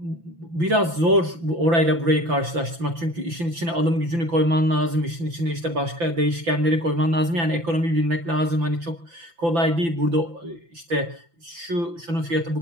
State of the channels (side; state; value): left; late; 5.9 ms